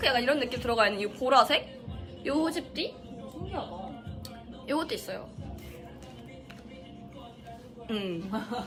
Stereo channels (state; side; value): identical; both; correlation 1.00